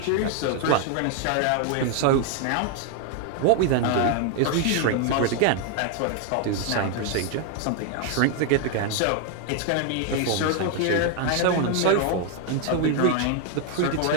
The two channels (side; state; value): both; different; correlation 0.00